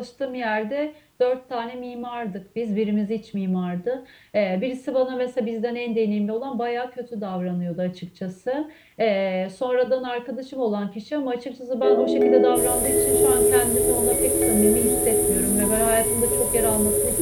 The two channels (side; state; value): both; identical; correlation 1.00